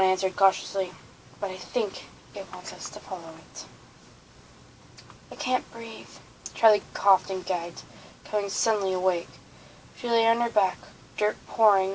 answered cautiously, "but I think it wants us to follow it." "I can't breathe." Charlie coughed and gagged, coming suddenly awake. She lay on her back, dirt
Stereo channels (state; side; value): identical; both; correlation 1.00